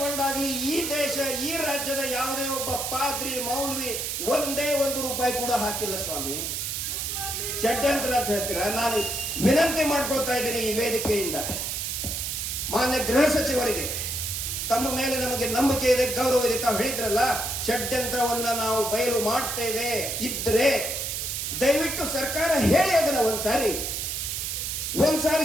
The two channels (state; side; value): noise; right; hiss, 3 dB below the sound